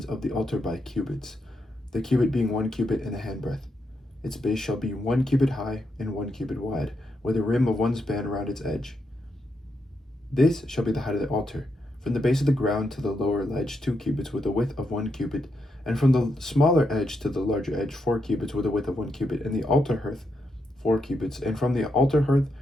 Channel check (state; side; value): normal; both; correlation 0.82